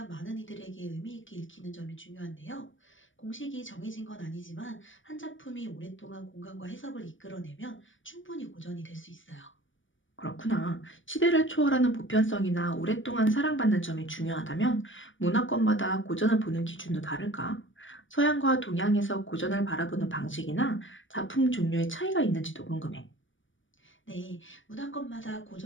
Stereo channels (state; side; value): late; right; 0.56 ms